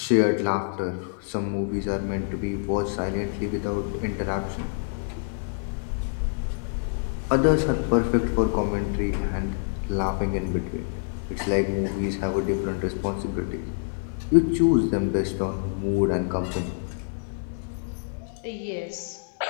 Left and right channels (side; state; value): right; silent; 61 dB below the other